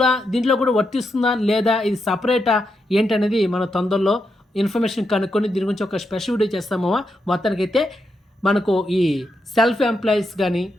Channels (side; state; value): both; normal; correlation 0.84